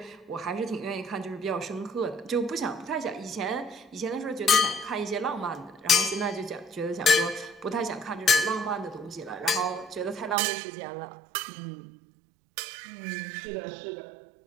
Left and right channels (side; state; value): left; drops out; at 10.4 s